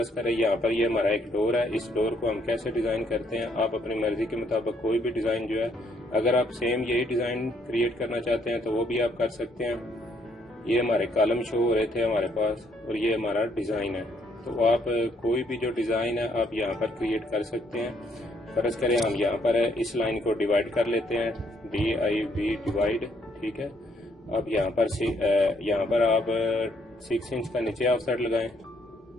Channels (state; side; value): normal; both; correlation 0.69